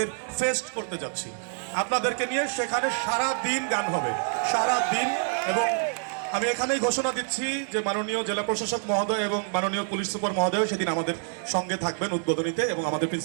ফেস্ট করতে যাচ্ছি আপনাদেরকে নিয়ে। সেখানে সারা দিন গান হবে, সারা দিন। এবং আমি এখানেই ঘোষণা দিচ্ছি যে মাননীয় জেলা প্রশাসক মহোদয় এবং মাননীয় পুলিশ সুপার মহোদয় সেদিন আমাদের সঙ্গে থাকবেন উদ্বোধনীতে, এবং আমাদের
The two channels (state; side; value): silent; left; 58 dB below the other